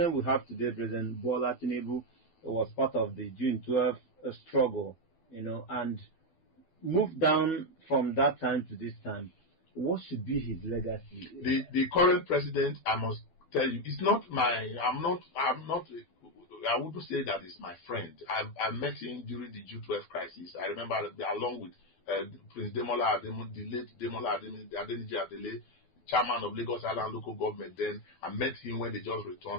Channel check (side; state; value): right; late; 12 ms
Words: we have today, President Bola Tinubu, was part of the June 12th struggle, and moved down from that time to this time. What should be his legacy? The current president, I must tell you, it's not my. I'm not. I wouldn't say that it's my friend. I met him during the June 12 crisis. I remember along with Prince Demola Ademo, the late Demola Adeniji Adele, chairman of Lagos Island local government. Then I met him when they just